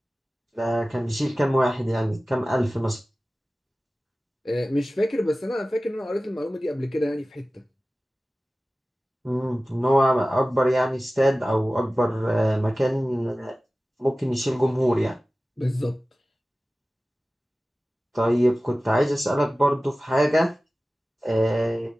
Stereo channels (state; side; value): normal; both; correlation 0.97